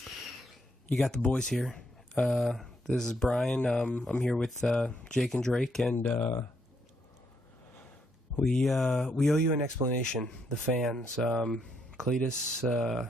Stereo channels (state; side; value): normal; both; correlation 0.75